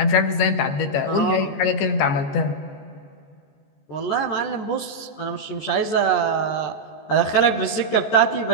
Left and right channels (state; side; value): late; right; 14 ms